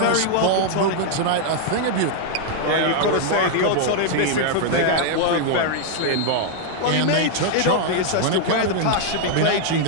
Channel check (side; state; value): both; different; correlation 0.00